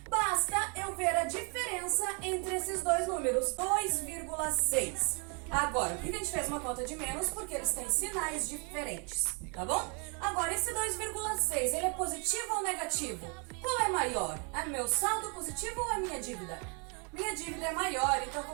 Basta eu ver a diferença entre esses dois números, 2,6. Agora, por que a gente fez uma conta de menos? Porque eles têm sinais diferentes, tá bom? Agora, esse 2,6, ele é positivo ou negativo? Qual é maior? É meu saldo positivo ou a minha dívida? Minha dívida é maior, então eu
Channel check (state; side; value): quieter; left; 36.7 dB